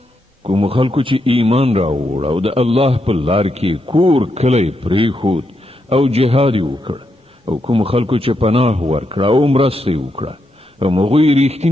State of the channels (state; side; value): normal; both; correlation 0.82